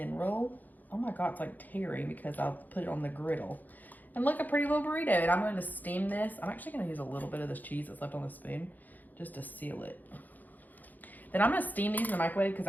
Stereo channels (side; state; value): right; late; 0.083 ms